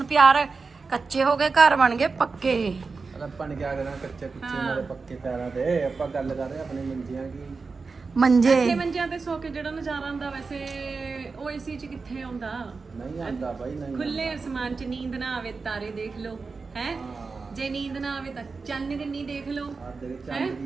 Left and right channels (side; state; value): left; quieter; 4.4 dB